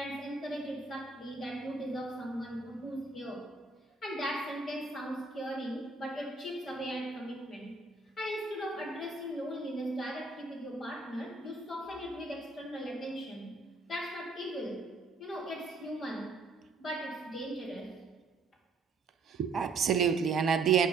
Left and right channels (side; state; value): left; quieter; 3.7 dB